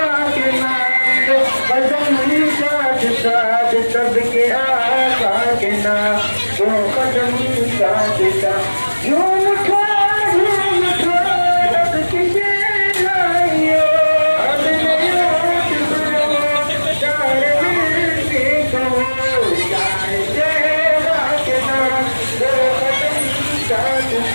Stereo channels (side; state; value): both; inverted; correlation -1.00